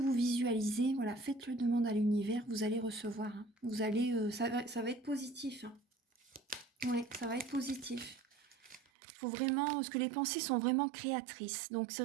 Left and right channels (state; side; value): drops out; left; at 8.8 s